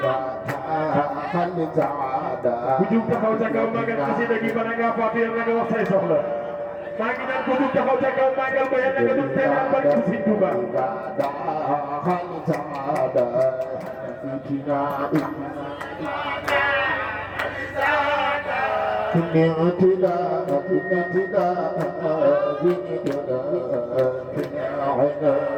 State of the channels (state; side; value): identical; both; correlation 1.00